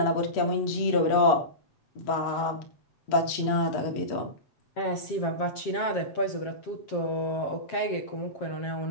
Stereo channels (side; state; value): right; late; 7.5 ms